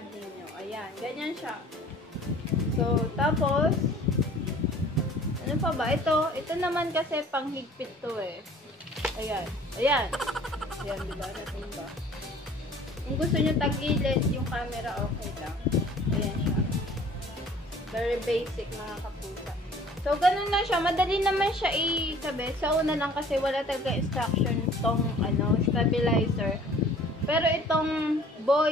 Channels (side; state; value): both; normal; correlation 0.51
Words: ninyo. Ayan. Ganyan siya. So, tapos, ano Ano pa ba? Ito naman kasi panghigpit to eh. Ayan. Ayan. Ayan, diba? Natimba. Kung gusto nyo tagilid yung camera, okay lang. Ayan siya. Very basic mga kapusa. So, ganun lang siya. Madali naman siya ikabit. Sa una lang kasi wala talaga instruction itong stabilizer. Pero itong